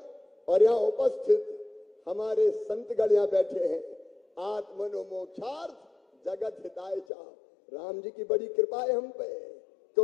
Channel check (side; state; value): right; drops out; at 7.1 s